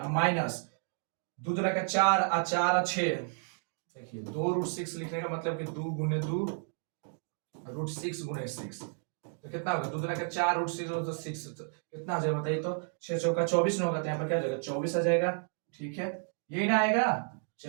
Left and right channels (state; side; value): silent; left; 56 dB below the other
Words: माइनस 2 दूना का 4 और 4 और 6। देखिए 2√6 लिखने का मतलब कि 2 गुने 2 √6 गुने 6, तो कितना होगा, 2 दूना का 4 √6 तो 6, तो कितना हो जाएगा बताइए, तो 6 चौका 24 न होगा, तो यहाँ पर क्या हो जाएगा 24 आ जाएगा, ठीक है, यही ना आएगा।